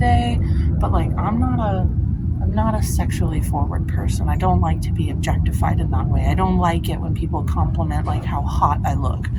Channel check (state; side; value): identical; both; correlation 1.00